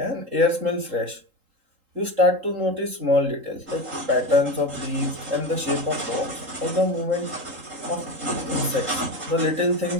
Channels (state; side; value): late; left; 3.8 ms